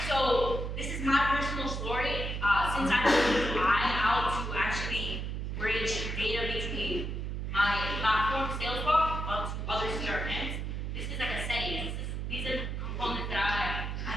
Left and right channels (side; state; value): right; noise; hum, 3 dB below the sound